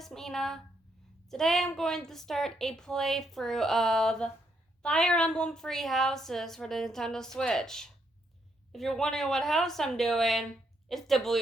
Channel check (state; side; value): normal; both; correlation 0.76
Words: Mina. Today I'm going to start a playthrough of Fire Emblem Three Houses for the Nintendo Switch. If you're wondering what house I'm doing, it's the